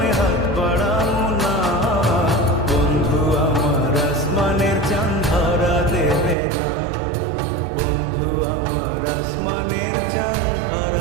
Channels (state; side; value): drops out; left; at 6.4 s